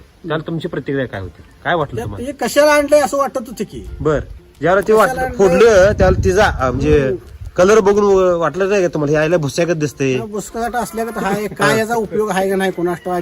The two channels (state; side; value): identical; both; correlation 1.00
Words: त्याला तुमची प्रतिक्रिया काय होती, काय वाटलं तुम्हाला? ते कशाला आणलंय असं वाटत होतं की बर, ज्यावेळेला ते कशाला आणलं? फोडलं त्यावेळेला तिचा म्हणजे कलर बघून वाटलं नाही का तुम्हाला, यायला भुस्यागत दिसतंय? बुसकाट असल्या का हाय, काय याचा उपयोग आहे का नाही कोणास